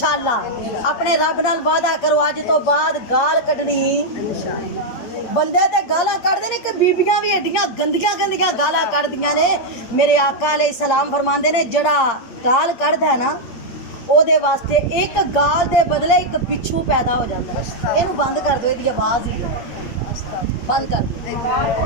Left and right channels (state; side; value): late; right; 8.6 ms